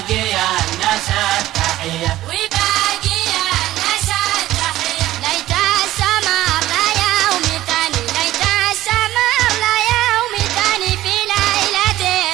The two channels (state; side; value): quieter; left; 15.0 dB